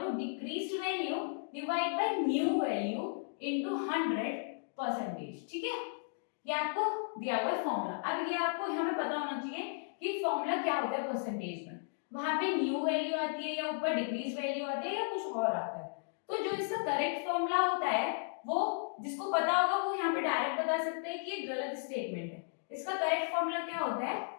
decreased value divide by new value into 100%, ठीक है। ये आपको दिया हुआ है फॉर्मूला। अब ये आपको यहाँ पे पता होना चाहिए कि फॉर्मूला क्या होता है परसेंटेज में, वहां पे न्यू वैल्यू आती है या ऊपर डिक्रीज वैल्यू आती है या कुछ और आता है। तो जो इसका करेक्ट फॉर्मूला होता है वो जिसको पता होगा वो यहाँ पे डायरेक्ट बता सकते हैं कि ये गलत स्टेटमेंट है। इसका करेक्ट फॉर्मूला क्या होता है,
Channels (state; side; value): silent; right; digital silence